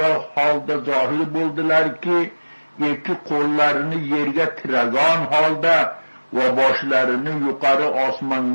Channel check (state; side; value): inverted; both; correlation -1.00